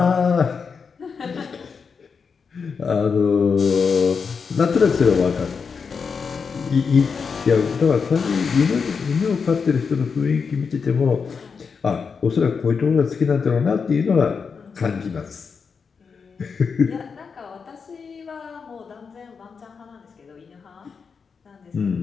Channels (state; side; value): quieter; right; 5.6 dB